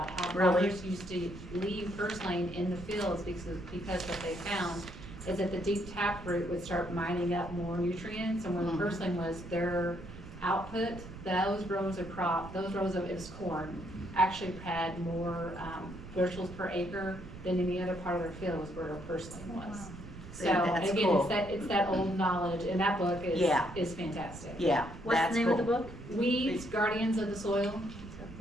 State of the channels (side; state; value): right; noise; rumble, 14 dB below the sound